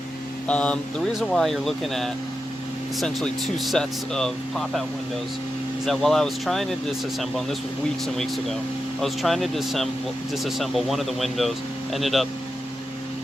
The reason why you're looking at essentially two sets of pop-out windows is that while I was trying to disassemble, and this was weeks and weeks ago, I was trying to disassemble one of the windows, ended up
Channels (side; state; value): both; normal; correlation 0.89